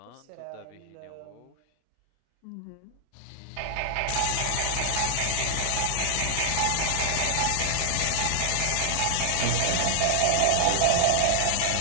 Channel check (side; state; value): both; different; correlation -0.01